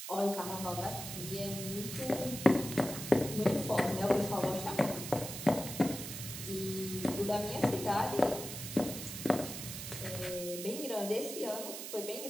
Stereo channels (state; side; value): noise; right; hiss, 8 dB below the sound